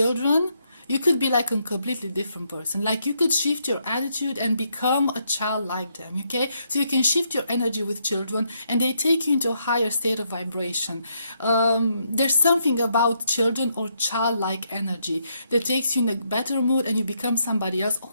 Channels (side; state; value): both; inverted; correlation -0.76